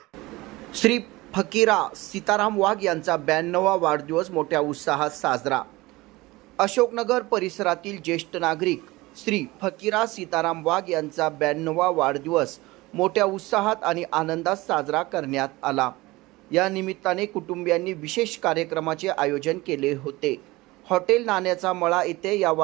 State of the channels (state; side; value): quieter; left; 20.6 dB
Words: श्री फकीरा सीताराम वाघ यांचा 92वा वाढदिवस मोठ्या उत्साहात साजरा. अशोकनगर परिसरातील ज्येष्ठ नागरिक श्री फकीरा सीताराम वाघ यांचा 92वा वाढदिवस मोठ्या उत्साहात आणि आनंदात साजरा करण्यात आला. या निमित्ताने कुटुंबियांनी विशेष कार्यक्रमाचे आयोजन केले होते. हॉटेल नाण्याचा मळा येथे या